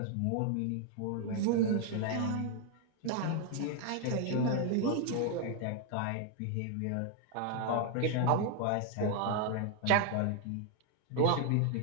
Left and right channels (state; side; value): different; both; correlation 0.00